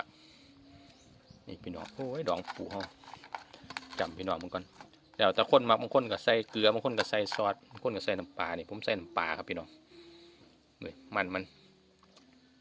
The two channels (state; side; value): identical; both; correlation 1.00